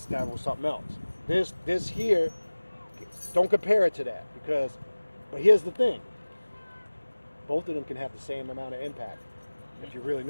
was something else. This here, don't compare it to that but here's the thing. Both of them can have the same amount of impact if you really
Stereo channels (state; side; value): inverted; both; correlation -1.00